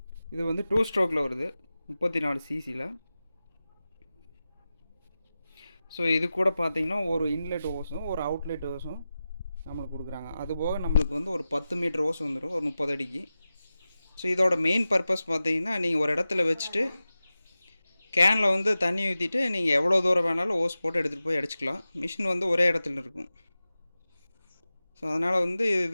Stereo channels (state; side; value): inverted; both; correlation -0.94